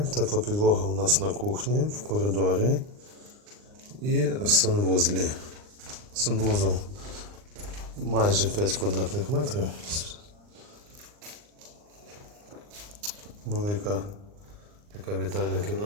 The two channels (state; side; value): late; left; 39 ms